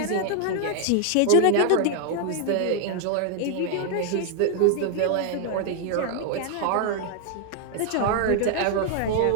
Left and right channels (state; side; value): different; both; correlation 0.00